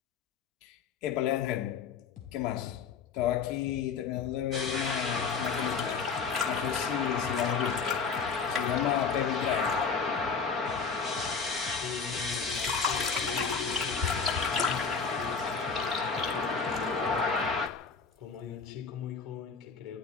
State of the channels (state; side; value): quieter; right; 5.6 dB